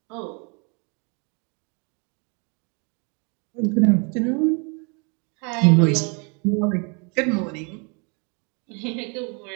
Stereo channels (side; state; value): left; quieter; 34.1 dB